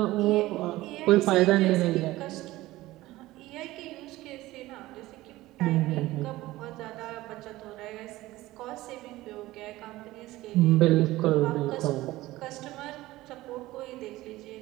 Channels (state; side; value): quieter; left; 17.5 dB